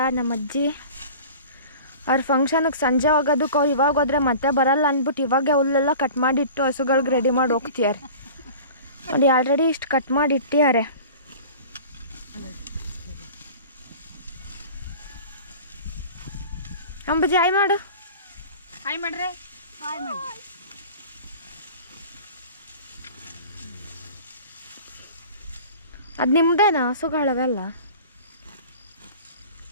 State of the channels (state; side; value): inverted; both; correlation -0.40